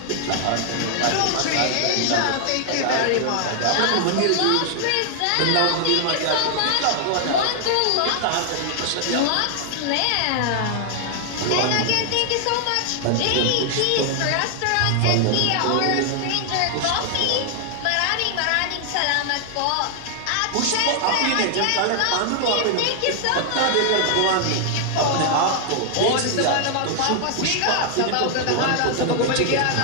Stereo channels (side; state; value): both; different; correlation 0.00